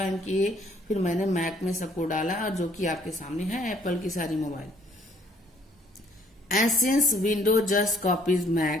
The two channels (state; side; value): normal; both; correlation 0.62